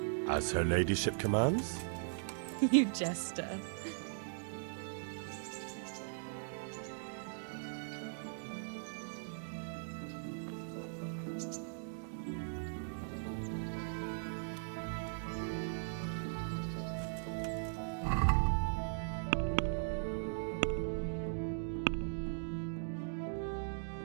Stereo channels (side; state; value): left; silent; digital silence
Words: As her ladyship commands? You jester.